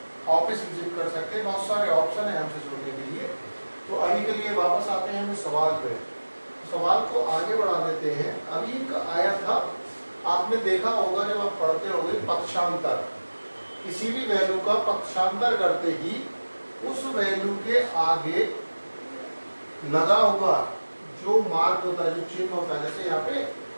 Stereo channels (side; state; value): both; inverted; correlation -1.00